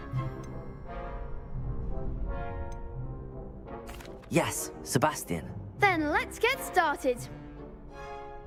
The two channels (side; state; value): both; identical; correlation 1.00